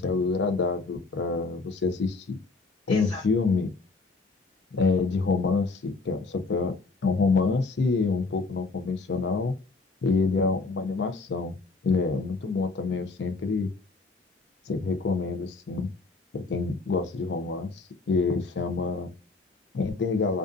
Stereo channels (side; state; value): right; quieter; 3.9 dB